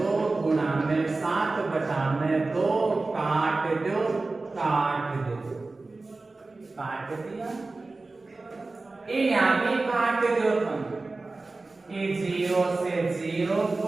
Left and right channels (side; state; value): left; quieter; 3.4 dB